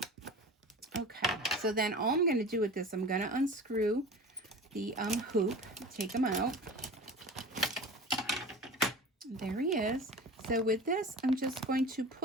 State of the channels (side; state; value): both; normal; correlation 0.36